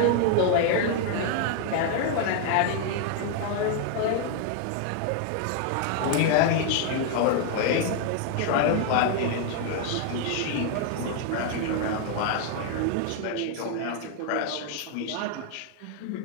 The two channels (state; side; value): different; both; correlation 0.00